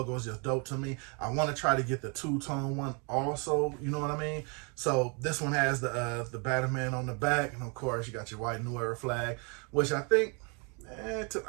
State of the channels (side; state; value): left; quieter; 34.3 dB